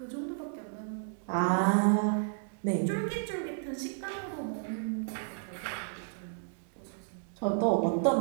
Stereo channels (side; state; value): left; silent; digital silence